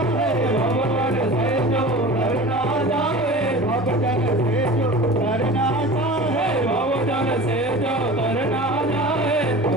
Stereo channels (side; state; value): both; normal; correlation 0.36